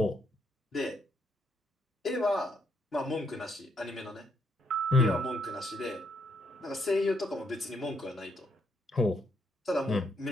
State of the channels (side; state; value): both; normal; correlation 0.74